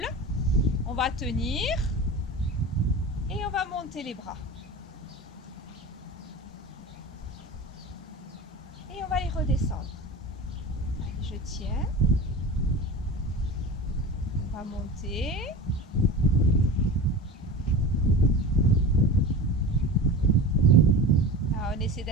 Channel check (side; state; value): both; normal; correlation 0.32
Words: On va tenir. Et on va monter les bras. Et on va les redescendre. Allez, je tiens. On va monter. Alors, on essaie